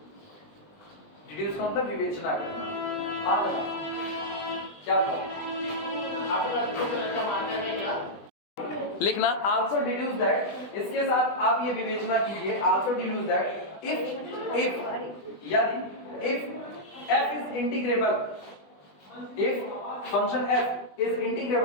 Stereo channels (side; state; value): right; late; 20 ms